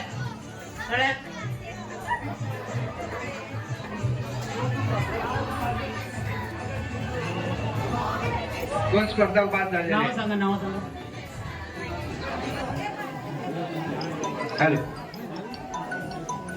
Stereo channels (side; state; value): both; identical; correlation 1.00